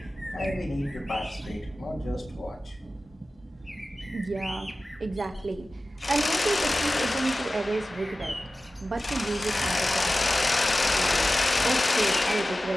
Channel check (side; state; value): both; normal; correlation 0.95